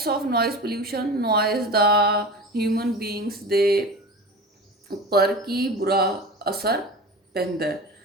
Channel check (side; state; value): both; normal; correlation 0.32